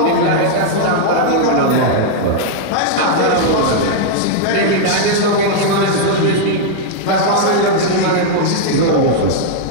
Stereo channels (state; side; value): different; both; correlation -0.01